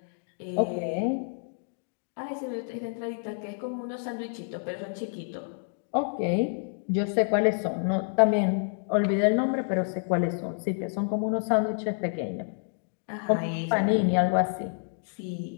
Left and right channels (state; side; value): silent; right; digital silence